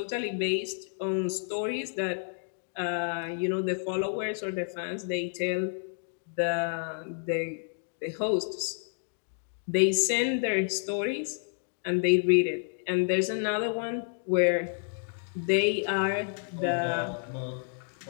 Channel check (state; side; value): silent; right; digital silence